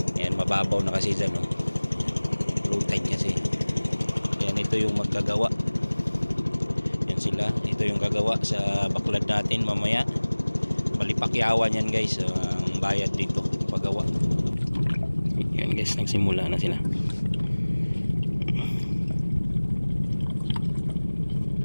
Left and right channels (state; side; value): inverted; both; correlation -1.00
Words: Ayan, mababaw na kasi dyan, no. Low tide kasi. Ayan, ito yung maggagawa. Yan sila, ito yung gagawa sa baklad natin mamaya. Malipakyawan yan guys, ang bayad dito paggawa. Yan guys, nagsimula na sila.